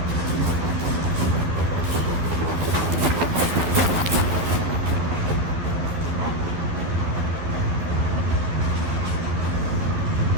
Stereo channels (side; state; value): left; late; 12 ms